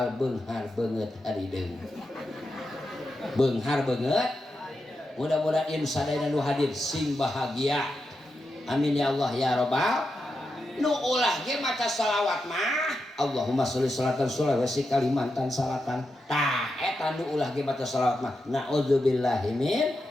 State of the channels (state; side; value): normal; both; correlation 0.87